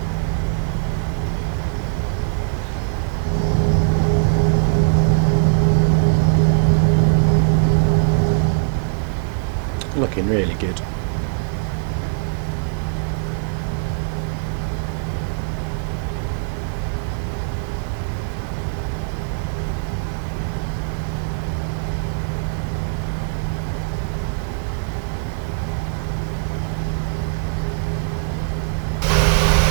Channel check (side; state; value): left; silent; 62 dB below the other